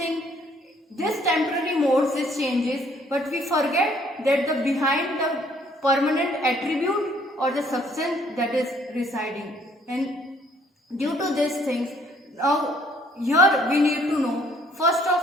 This temporary modes, these changes, but we forget that the behind the permanent attribute or the substance that is residing. And due to these things, now here we need to know, first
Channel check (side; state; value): both; normal; correlation 0.62